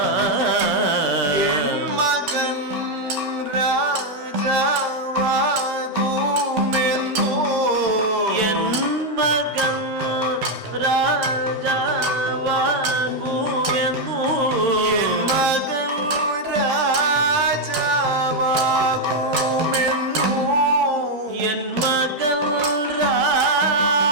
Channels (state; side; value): normal; both; correlation 0.02